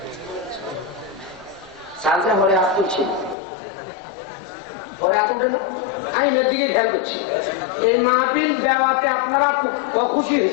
সালসা পরে হাত তুলছে, পরে হাত উঠে না, আইনের দিকে খেয়াল করছি। এই মাহফিল দেওয়াতে আপনারা খুশি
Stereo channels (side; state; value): right; drops out; at 3.4 s